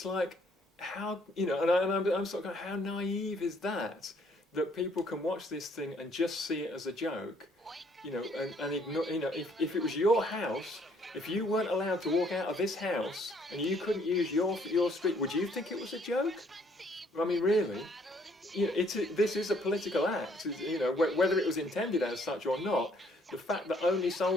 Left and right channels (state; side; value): normal; both; correlation 0.65